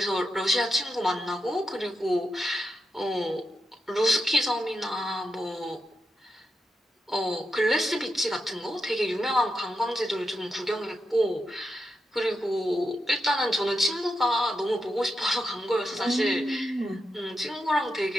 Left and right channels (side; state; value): both; normal; correlation 0.87